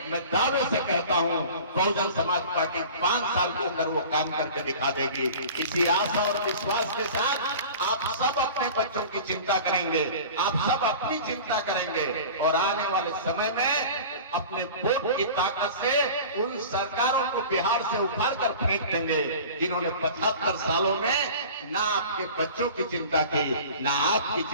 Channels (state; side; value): inverted; both; correlation -0.39